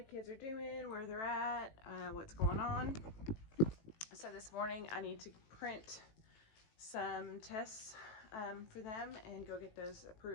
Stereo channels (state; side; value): late; right; 18 ms